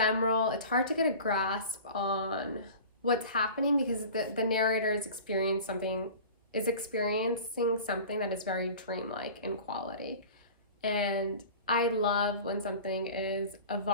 It's hard to get a grasp on what's happening because the narrator is experiencing something that is very dreamlike in quality. And I love when something is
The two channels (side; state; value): both; inverted; correlation -0.39